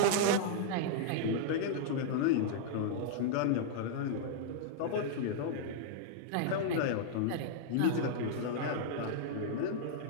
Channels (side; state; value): both; different; correlation -0.01